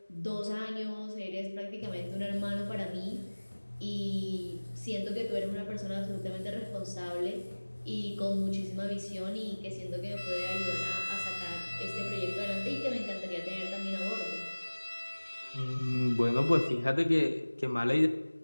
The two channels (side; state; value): both; inverted; correlation -1.00